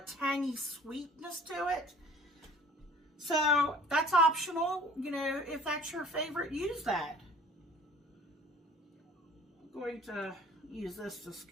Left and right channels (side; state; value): both; normal; correlation 0.49